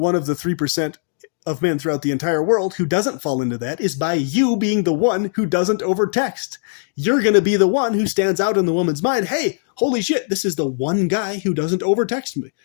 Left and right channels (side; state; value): right; silent; digital silence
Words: of the 3% of men throughout the entire world who doesn't fall into that is by you being the one who doesn't overtext. You're going to be the one who stands out in the woman's mind. Hey, holy shit, this is the one guy who doesn't overtext me.